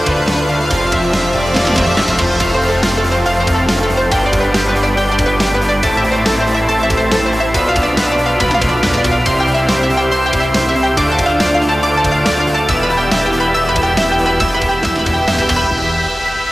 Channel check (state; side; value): normal; both; correlation 0.96